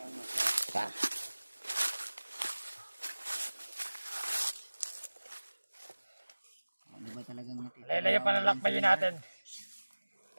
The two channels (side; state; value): both; inverted; correlation -1.00